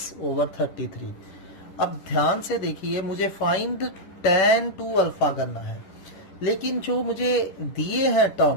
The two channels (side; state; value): right; late; 10 ms